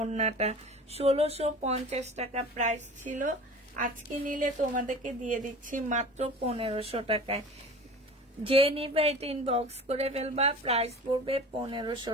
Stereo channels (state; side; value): normal; both; correlation 0.39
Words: 1650 টাকা প্রাইস ছিল, আজকে নিলে তোমাদেরকে দিয়ে দিচ্ছি মাত্র 1500 টাকায়। যে নিবে এটা ইনবক্স করে ফেলবা। প্রাইস পড়বে 1500